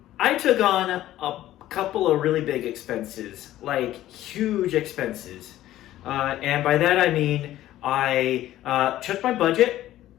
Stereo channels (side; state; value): right; quieter; 14.0 dB